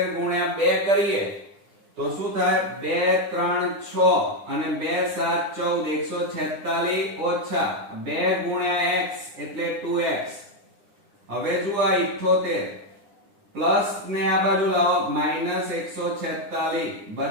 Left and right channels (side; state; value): left; late; 9.9 ms